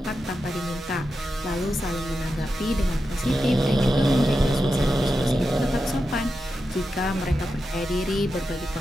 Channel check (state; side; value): normal; both; correlation 0.89